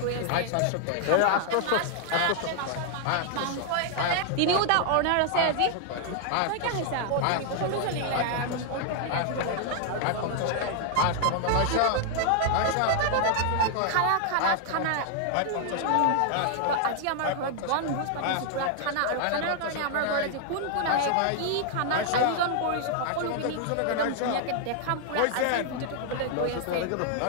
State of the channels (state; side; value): different; both; correlation 0.00